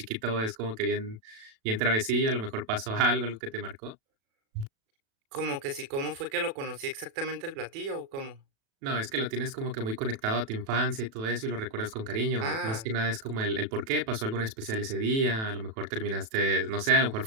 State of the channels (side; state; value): left; late; 36 ms